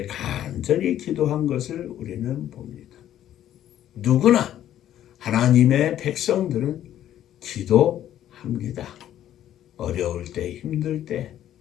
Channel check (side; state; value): right; quieter; 11.7 dB